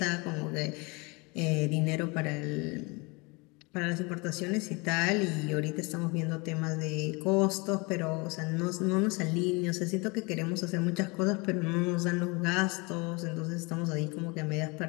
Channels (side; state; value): right; quieter; 27.9 dB